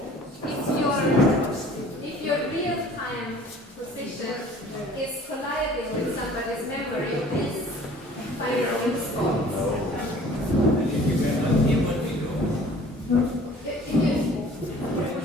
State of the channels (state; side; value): normal; both; correlation 0.50